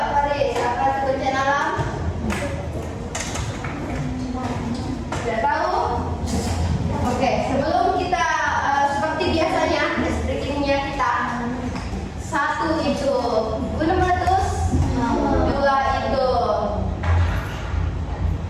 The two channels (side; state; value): both; identical; correlation 1.00